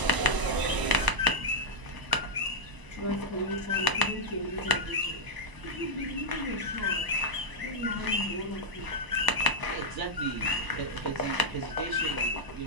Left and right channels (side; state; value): left; late; 1.0 ms